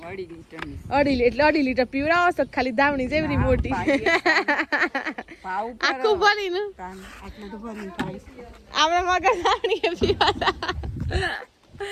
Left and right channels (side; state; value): both; identical; correlation 1.00